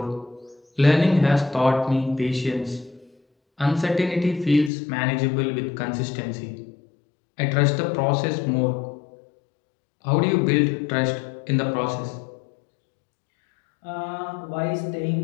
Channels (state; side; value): drops out; right; at 4.7 s